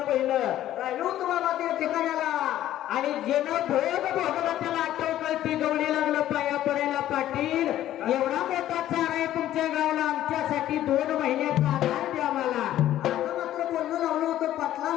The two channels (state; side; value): quieter; right; 12.8 dB